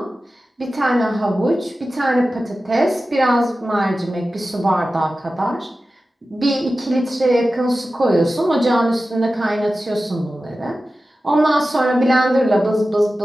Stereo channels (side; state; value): both; normal; correlation 0.94